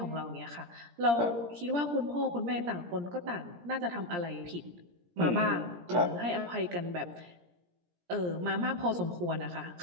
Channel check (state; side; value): late; left; 17 ms